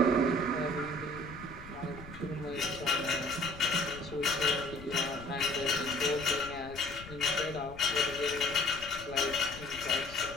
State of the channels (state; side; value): noise; left; rumble, 16 dB below the sound